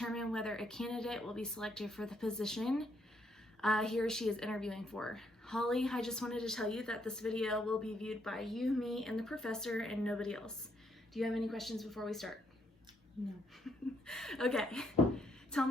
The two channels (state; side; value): normal; both; correlation 0.73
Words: whether a candidate will be selected for the position he or she is interviewing for. Holly, I just wanted to tell you that this video will be viewed by you, me, and the professor, and nobody else. Do you have any questions before we start? No. Okay, tell